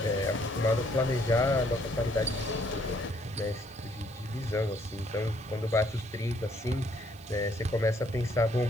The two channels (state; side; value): noise; right; hiss, 25 dB below the sound